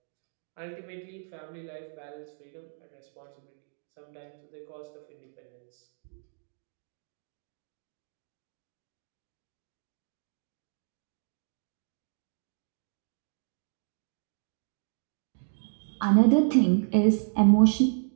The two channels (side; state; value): left; silent; 57 dB below the other